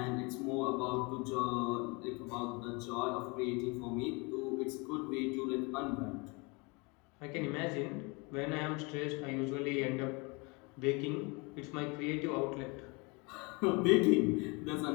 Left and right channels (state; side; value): quieter; right; 28.8 dB